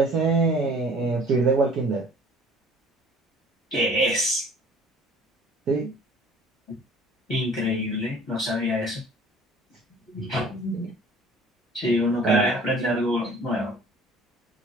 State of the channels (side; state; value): both; normal; correlation 0.50